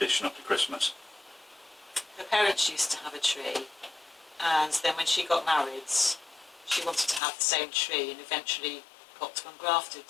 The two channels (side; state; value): right; drops out; at 7.2 s